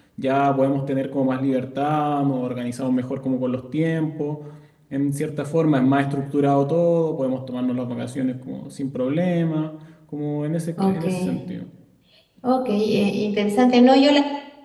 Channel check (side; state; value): both; identical; correlation 1.00